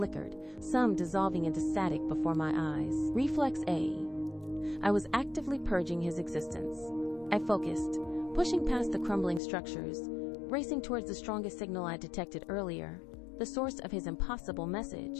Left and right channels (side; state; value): right; drops out; at 9.4 s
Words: some dissolving into static before my eyes. Reflex A. I was actively purging his existence. I focused, pushing past the crumbling structures, racing towards the strongest signal I detected earlier, the source of his impossible